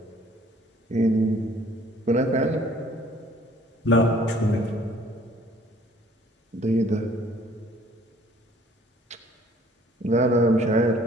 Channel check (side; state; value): both; normal; correlation 0.57